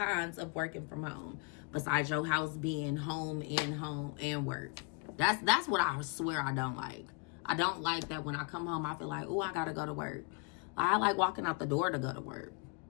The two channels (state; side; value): quieter; right; 34.3 dB